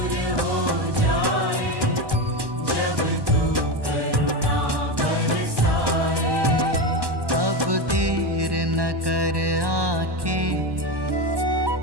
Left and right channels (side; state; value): left; late; 1.1 ms